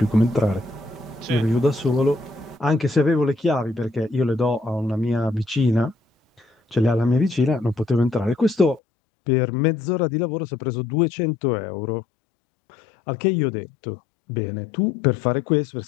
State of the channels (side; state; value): right; drops out; at 8.8 s